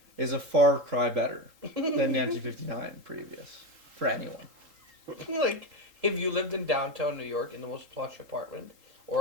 is a far cry better than 1959 previous for anyone. Like, if you lived in downtown New York in the most plush apartment,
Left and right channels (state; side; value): late; left; 3.8 ms